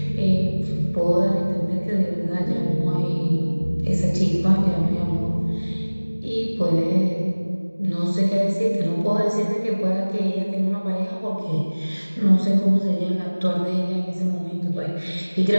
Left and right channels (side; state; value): both; inverted; correlation -1.00